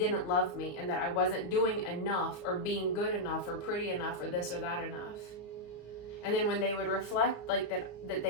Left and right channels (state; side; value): late; right; 34 ms